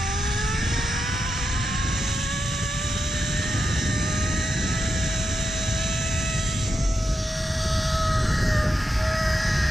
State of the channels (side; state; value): both; normal; correlation 0.86